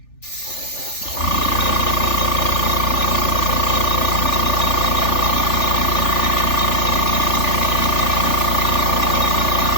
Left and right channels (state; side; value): late; right; 3.4 ms